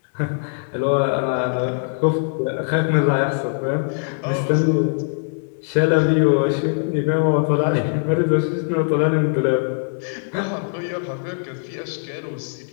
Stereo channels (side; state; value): right; silent; 65 dB below the other